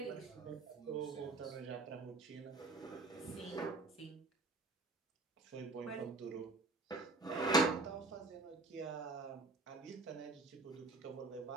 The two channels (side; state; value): left; quieter; 3.2 dB